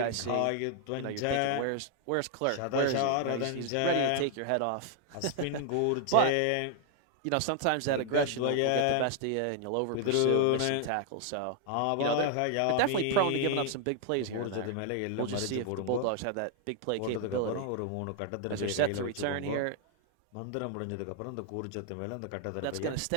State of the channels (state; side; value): different; both; correlation 0.00